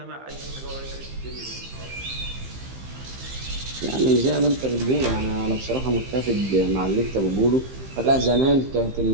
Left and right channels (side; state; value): left; late; 15 ms